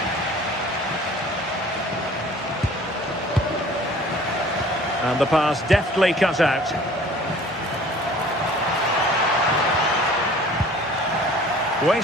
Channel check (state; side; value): normal; both; correlation 0.49